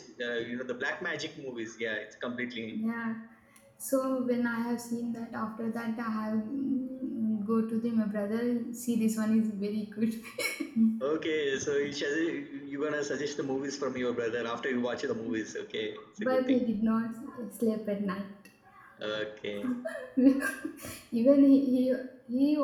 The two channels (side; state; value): both; identical; correlation 1.00